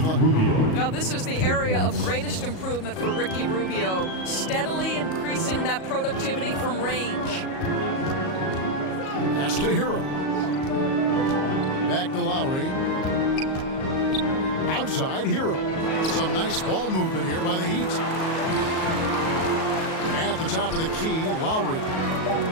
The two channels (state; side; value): late; right; 38 ms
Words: Now this is the area of greatest improvement for Ricky Rubio, steadily increasing that productivity from range. Pass to Hero. Back to Lowry. Outside Hero. Some nice ball movement here by the Heat. At the top of the key, Lowry.